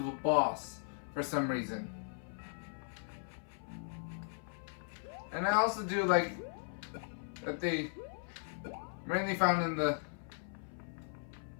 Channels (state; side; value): silent; right; 53 dB below the other